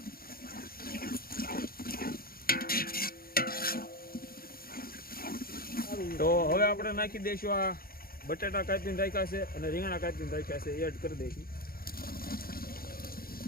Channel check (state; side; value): late; right; 0.43 ms